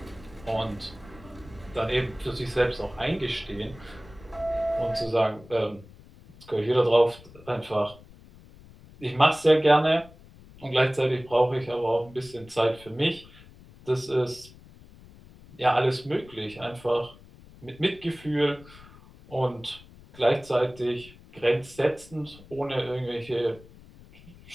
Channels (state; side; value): noise; left; rumble, 22 dB below the sound